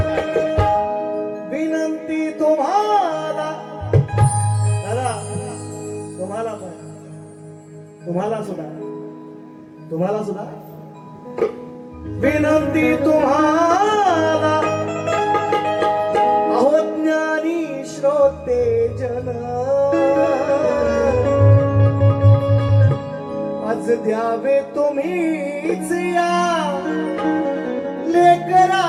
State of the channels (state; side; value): identical; both; correlation 1.00